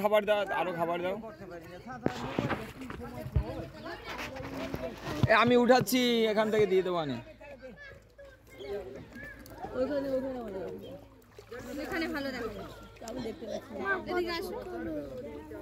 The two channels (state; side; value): identical; both; correlation 1.00